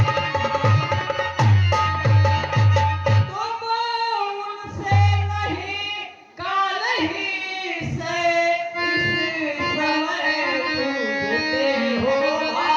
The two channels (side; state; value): both; identical; correlation 1.00